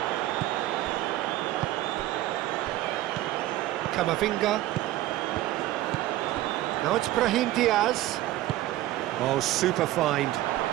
Camavinga. Now it's Brahim Diaz. Oh, super find.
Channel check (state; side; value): quieter; left; 15.3 dB